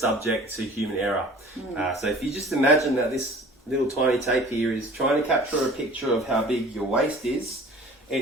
to human error. So if you just imagine that this little tiny tape here is trying to capture a picture of how big your waist is,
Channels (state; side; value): normal; both; correlation 0.46